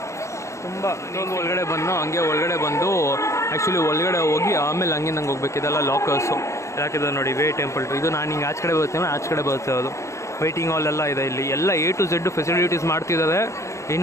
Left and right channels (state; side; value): late; right; 0.14 ms